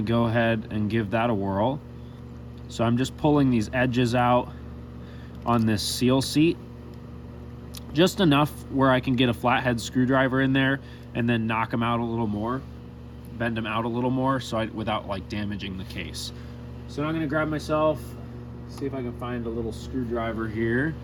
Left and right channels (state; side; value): identical; both; correlation 1.00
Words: go ahead and give that a whirl. So I'm just pulling these edges out on this seal seat, just enough where I can get a flathead screwdriver in there and then knock them out a little more, bend them out a little more without like damaging the case. So now I'm going to grab myself, see if I can find a little screwdriver here.